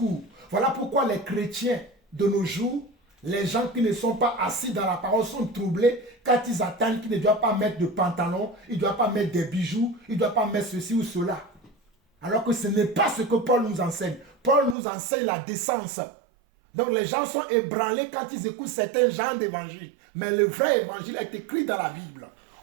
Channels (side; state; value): left; drops out; at 14.8 s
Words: Voilà pourquoi les chrétiens de nos jours, les gens qui ne sont pas assis dans la parole sont troublés quand ils attendent qu'ils ne doivent pas mettre de pantalon, ils ne doivent pas mettre des bijoux, ils ne doivent pas mettre ceci ou cela. Alors que ce n'est pas ce que Paul nous enseigne. Paul nous enseigne la décence. Donc les gens sont ébranlés quand ils écoutent certains genres d'évangile. Mais le vrai évangile est écrit dans la Bible.